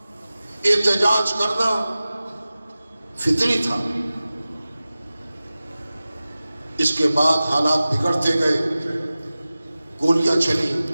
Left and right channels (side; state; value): both; inverted; correlation -0.96